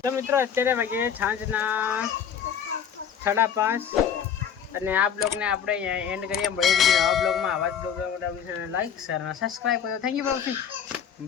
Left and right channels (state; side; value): quieter; right; 7.9 dB